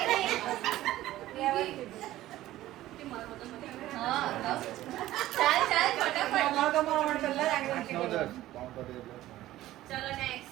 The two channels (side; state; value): left; quieter; 15.1 dB